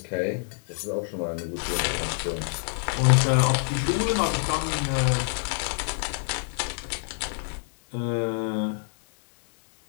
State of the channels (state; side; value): silent; right; digital silence